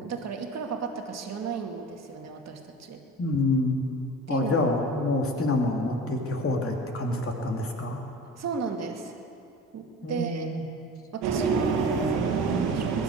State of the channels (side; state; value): both; normal; correlation 0.37